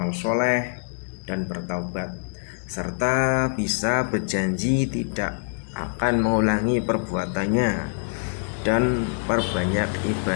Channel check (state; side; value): silent; right; digital silence